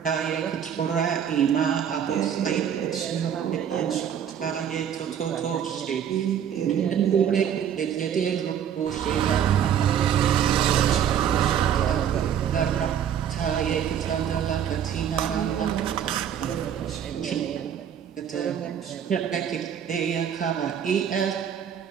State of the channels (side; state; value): left; quieter; 8.9 dB